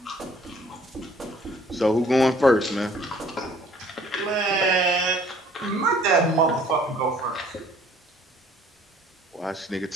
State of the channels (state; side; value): normal; both; correlation 0.57